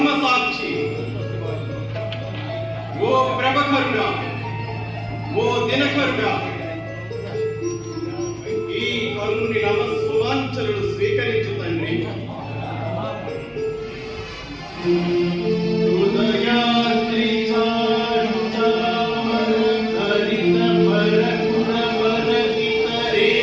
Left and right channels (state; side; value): identical; both; correlation 1.00